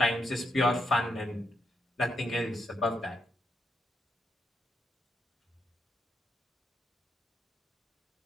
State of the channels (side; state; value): both; normal; correlation 0.81